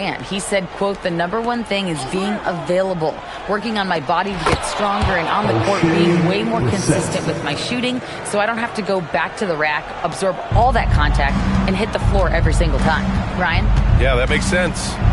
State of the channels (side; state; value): both; identical; correlation 1.00